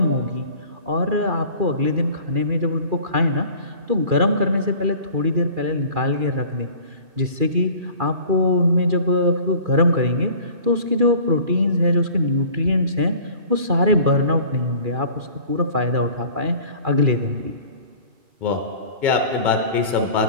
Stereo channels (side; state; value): left; late; 2.4 ms